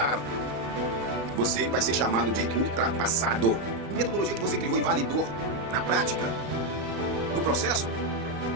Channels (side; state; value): left; late; 35 ms